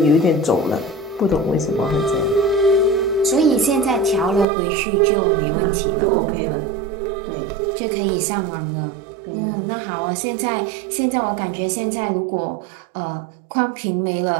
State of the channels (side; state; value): left; drops out; at 4.5 s